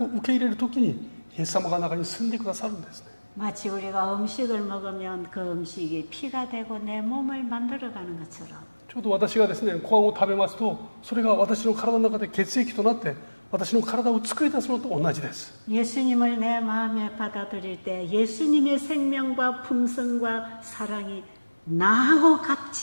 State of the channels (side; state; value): both; inverted; correlation -1.00